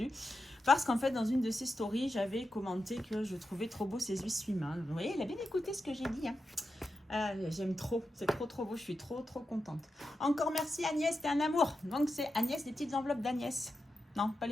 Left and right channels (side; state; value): both; normal; correlation 0.89